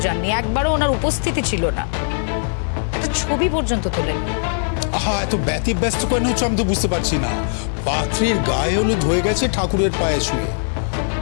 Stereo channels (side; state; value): right; silent; digital silence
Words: যাননি, একবারও ওনার উপস্থিতি ছিল না, একটা ছবি পর্যন্ত তোলেননি। আহা, এত ব্যস্ত কেন হচ্ছে আমি তো বুঝতে পারছি না। পাত্রীর গায়ে হলুদ হয়ে গেছে ঠাকুরের পায়ে শুয়ে,